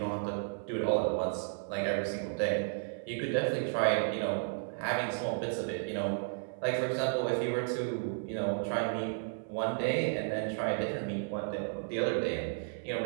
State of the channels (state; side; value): silent; left; 56 dB below the other